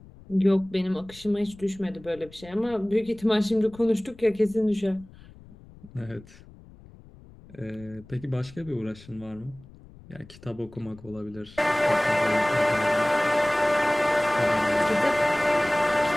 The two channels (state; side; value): noise; left; rumble, 22 dB below the sound